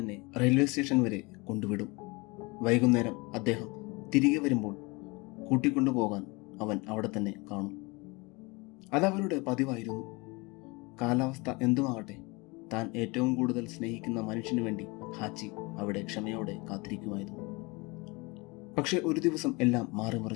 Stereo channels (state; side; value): quieter; right; 26.3 dB